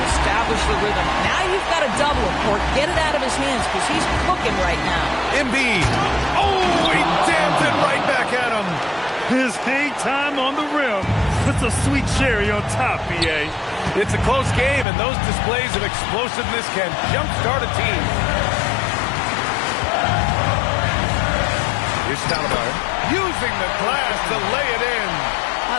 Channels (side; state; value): right; drops out; at 14.9 s